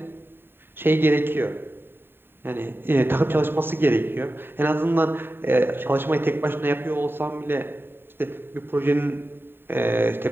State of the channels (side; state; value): left; late; 0.10 ms